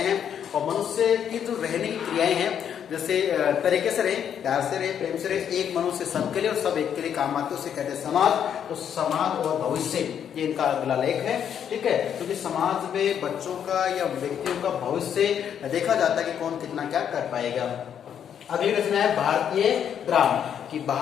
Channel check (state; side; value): quieter; right; 8.7 dB